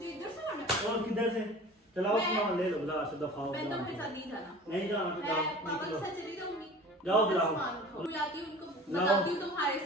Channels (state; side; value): normal; both; correlation 0.41